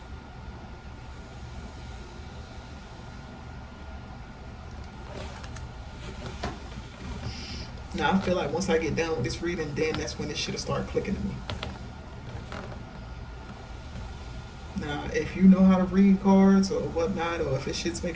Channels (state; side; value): identical; both; correlation 1.00